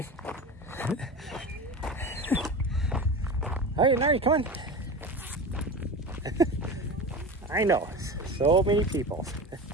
Alright, Nahri, come on. I know, so many people.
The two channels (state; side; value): normal; both; correlation 0.30